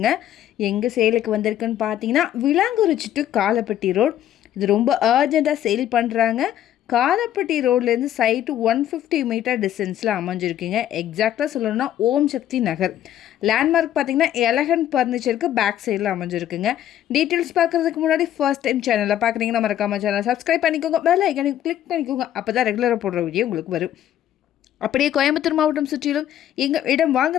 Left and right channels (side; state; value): right; quieter; 11.6 dB